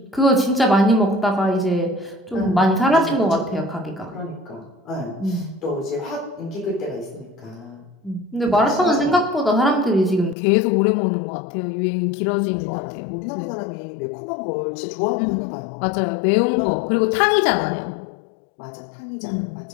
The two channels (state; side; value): drops out; right; at 10.4 s